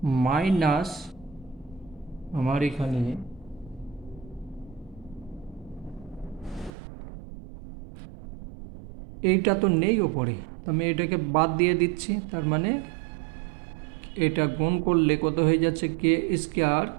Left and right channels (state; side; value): drops out; left; at 6.7 s